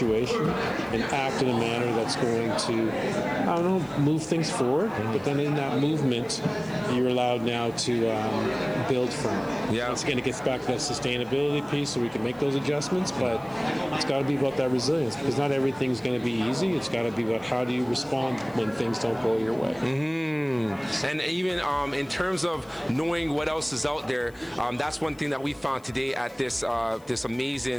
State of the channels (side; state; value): left; noise; hiss, 28 dB below the sound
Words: and act in a manner that's going to, I don't know, move things forward. But then in that movement, you're allowed now to build from it. Yeah. Once again, it gets back to that sustainability piece, so we can make those adjustments. But it's got to be about that resilience, because not everything's going to be easy. It's got to be about how do you respond when things don't go your way. And even in terms of knowing what else is out there, that's one thing that we found today at this this